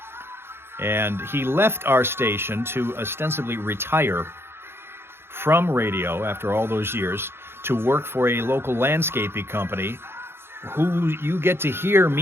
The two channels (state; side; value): late; left; 0.11 ms